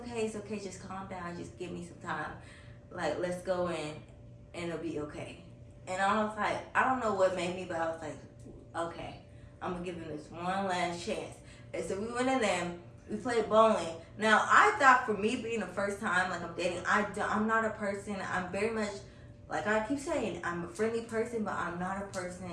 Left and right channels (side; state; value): both; identical; correlation 1.00